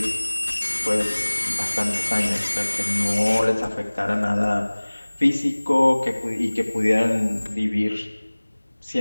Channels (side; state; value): both; inverted; correlation -1.00